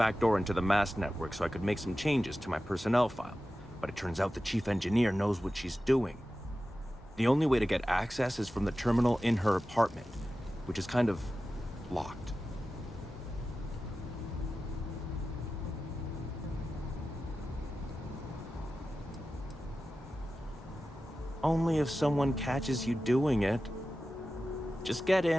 into the MAST network so I could make some changes to my personnel file. But it turns out the chief engineer knows what she's doing. The only way to get access is from the terminal in her apartment, which is kind of locked. Only if someone catches you doing it. Just get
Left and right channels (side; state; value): both; normal; correlation 0.94